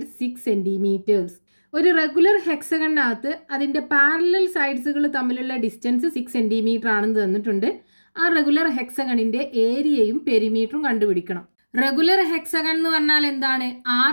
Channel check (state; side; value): inverted; both; correlation -1.00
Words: 6 centimetres. ഒരു regular ഹെക്സഗണിനകത്ത് അതിൻ്റെ പാരലൽ സൈഡ്സുകൾ തമ്മിലുള്ള ഡിസ്റ്റൻസ് 6 സെന്റിമീറ്റർ ആണെന്ന് തന്നിട്ടുണ്ട്. ആ റെഗുലർ ഹെക്സഗണിന്റെ ഏരിയയും പെരിമീറ്ററും കണ്ടുപിടിക്കണം. റെഗുലർ ഹെക്സഗൺ എന്ന് പറഞ്ഞാൽ എന്താണ്?